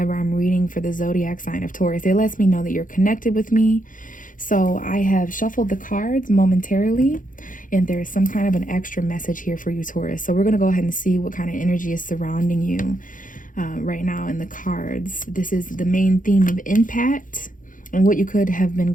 I'm reading for the zodiac sign of Taurus. It lets me know that you're connected with me. So I have shuffled the cards momentarily, and there's some kind of an extra message here for you, Taurus. So we're going to go ahead and see what kind of energy is surrounding you right now in the cards. This is the main theme of impact and what you could have been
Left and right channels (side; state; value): right; late; 0.39 ms